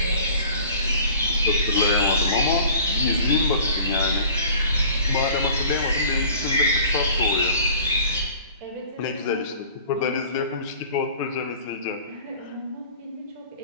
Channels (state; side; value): inverted; both; correlation -0.46